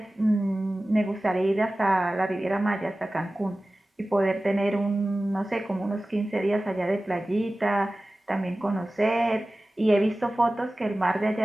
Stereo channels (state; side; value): normal; both; correlation 0.96